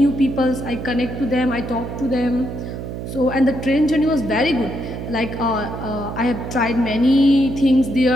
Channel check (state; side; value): noise; right; hum, 7 dB below the sound